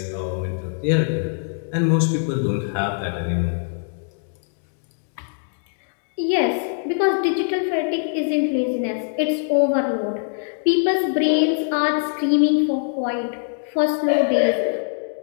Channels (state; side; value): silent; right; digital silence